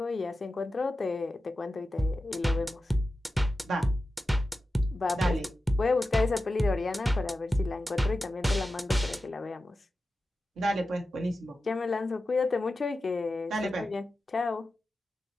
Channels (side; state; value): both; normal; correlation 0.92